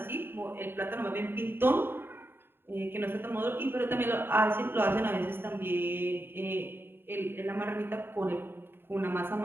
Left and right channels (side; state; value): left; late; 0.11 ms